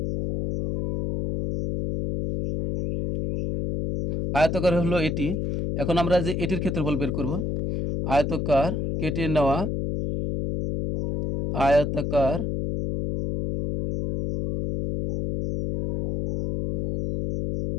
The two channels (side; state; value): left; noise; hum, 1 dB below the sound